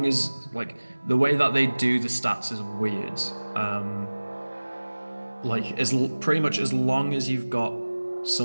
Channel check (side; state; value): both; inverted; correlation -1.00